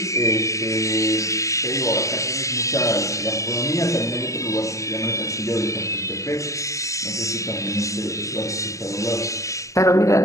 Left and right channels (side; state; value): right; late; 0.16 ms